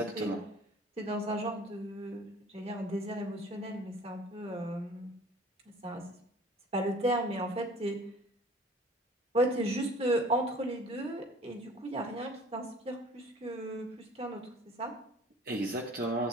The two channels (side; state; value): both; normal; correlation 0.49